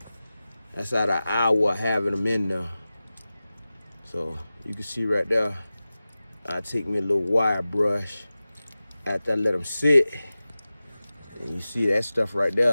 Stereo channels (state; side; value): inverted; both; correlation -0.96